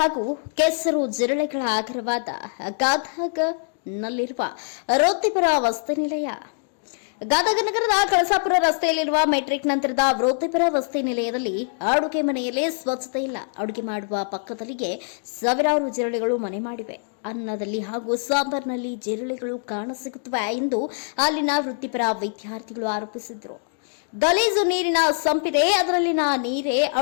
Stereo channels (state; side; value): silent; right; digital silence